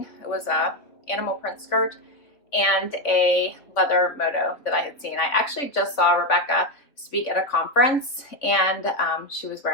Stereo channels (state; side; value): late; right; 3.5 ms